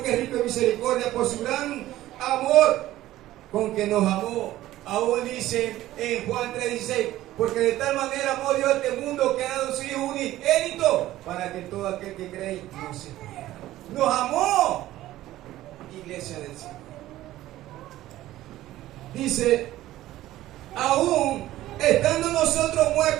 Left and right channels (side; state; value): left; quieter; 15.0 dB